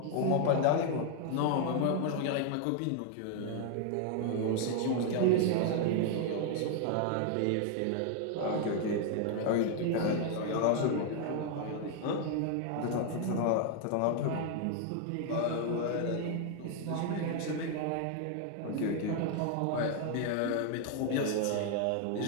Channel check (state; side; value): different; both; correlation 0.00